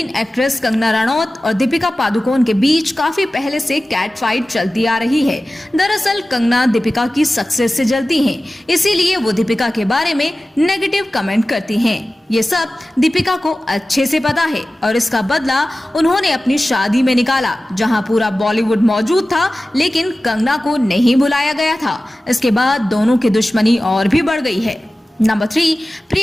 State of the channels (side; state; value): both; normal; correlation 0.96